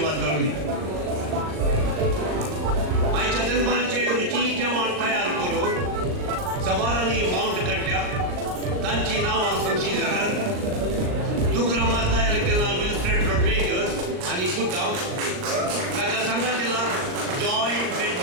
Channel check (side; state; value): left; late; 39 ms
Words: घालूं आयच्या दरबाराचेर रुची जेवण तयार करून सवारांनी माउंट काडल्या तांची नांवां सांगची जाल्यार दुग्रामा तयार केला विल्फ्रेड रॉड्रिगस आनी पुता ताका सांगा केला जॉय